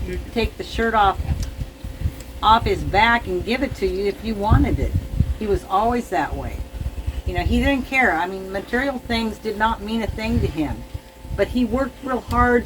take the shirt off his back and give it to you if you wanted it. He was always that way. You know, he didn't care. I mean, material things did not mean a thing to him, but he worked real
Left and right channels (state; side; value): identical; both; correlation 1.00